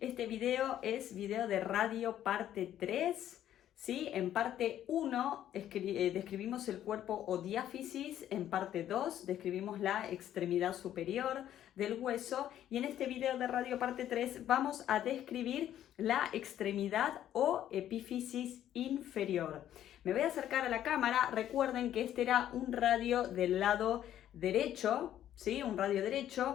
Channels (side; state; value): right; quieter; 11.5 dB